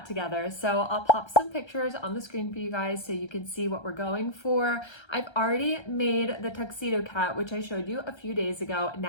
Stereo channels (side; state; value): right; late; 1.3 ms